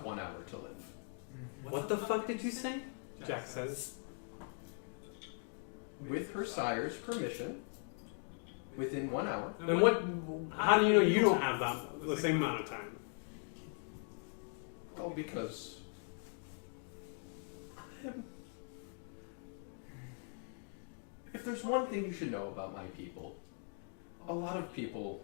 1 hour to live. What the fuck did you say? Jack says. With her sire's permission, within 1 hour. Then what, how do you know you don't have the same amount of time? Oh, because if there's one thing you should know about my people, a lot of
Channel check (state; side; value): silent; right; 51 dB below the other